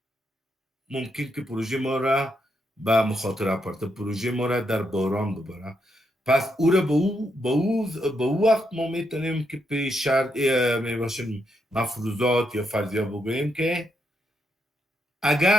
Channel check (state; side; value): normal; both; correlation 0.80